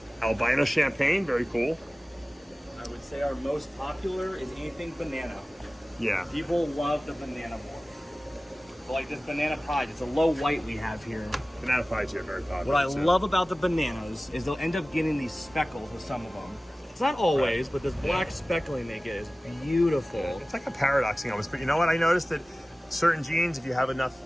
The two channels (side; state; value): both; normal; correlation 0.97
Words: Albino champagne, very cool. I would say our most popular is anything banana. Yeah. People love the banana more. But like this banana pied, it's a low white we have here. Banana pies are very popular. What I love about the bananas is they'll end up getting these speckles with some of them. It's not always, but this black speckling they get is beautiful. It's like a paradoxing almost, but you know what? I noticed that certain genes, if you have